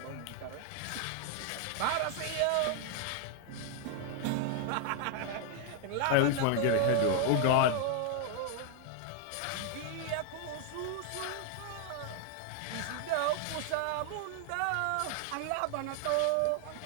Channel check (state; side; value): different; both; correlation 0.00